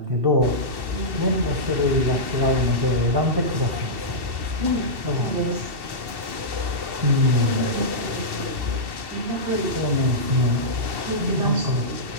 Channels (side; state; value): left; late; 2.7 ms